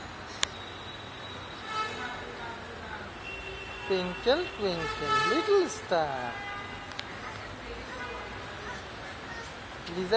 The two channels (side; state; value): both; identical; correlation 1.00